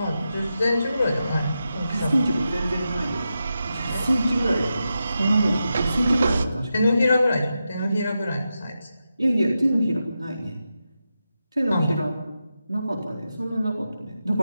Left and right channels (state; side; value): inverted; both; correlation -0.89